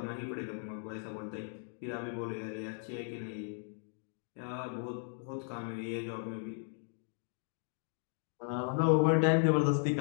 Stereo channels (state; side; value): silent; right; 54 dB below the other